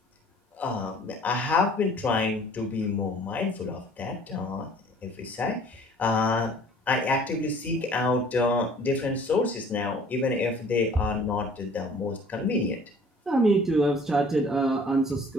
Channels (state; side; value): normal; both; correlation 0.52